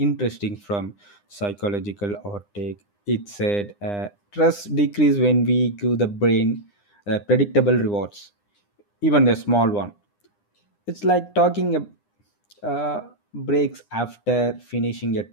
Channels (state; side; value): late; right; 9.8 ms